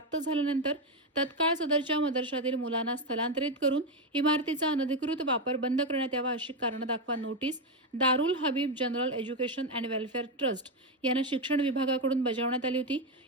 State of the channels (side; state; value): both; normal; correlation 0.08